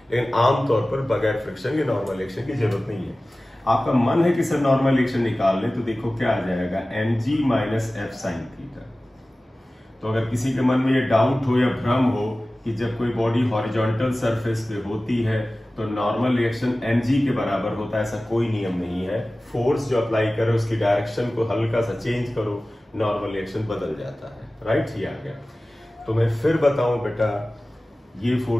लेकिन आमतौर पर बगैर फ्रिक्शन या नॉर्मल रिएक्शन की जरूरत नहीं है। आपका मन है कि सर नॉर्मल रिएक्शन निकाल लें, तो देखो क्या आ जाएगा, mg minus f sin theta. तो अगर किसी के मन में ये डाउट हो या भ्रम हो कि जब कोई बॉडी हॉरिजॉन्टल सरफेस पे होती है तो नॉर्मल रिएक्शन mg के बराबर होता है, ऐसा कोई नियम नहीं है। फोर्स जो अप्लाई करो उसकी डायरेक्शन को हल्का सा चेंज करो, नॉर्मल रिएक्शन बदल जाता है, राइट। ये आ गया। तो मैं फिर बताऊं बेटा, ये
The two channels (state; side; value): normal; both; correlation 0.97